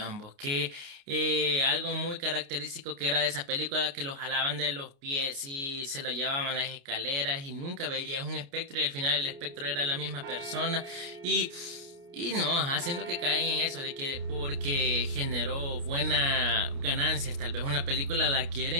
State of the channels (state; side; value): late; left; 29 ms